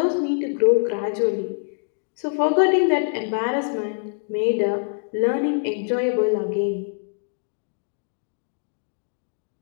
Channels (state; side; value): silent; right; digital silence